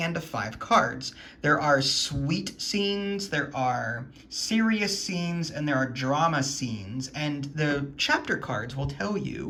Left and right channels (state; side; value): identical; both; correlation 1.00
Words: of 5 cards. There are sweet scenes, there are serious scenes, and there are drama scenes. And the chapter cards will tell